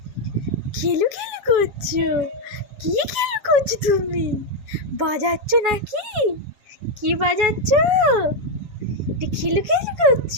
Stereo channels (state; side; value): late; left; 7.2 ms